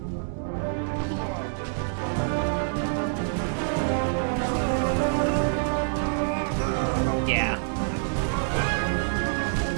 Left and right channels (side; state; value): left; silent; digital silence